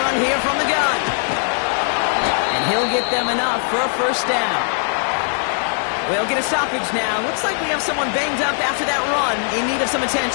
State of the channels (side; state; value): right; silent; 63 dB below the other